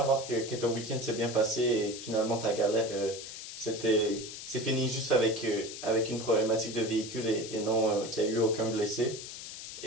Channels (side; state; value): left; noise; hiss, 10 dB below the sound